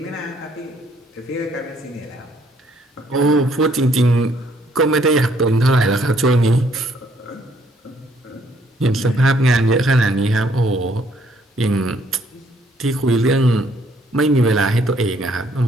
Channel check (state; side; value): normal; both; correlation 0.66